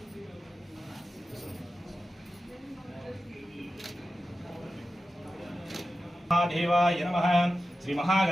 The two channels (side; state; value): both; normal; correlation 0.93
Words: देवाय नमः श्री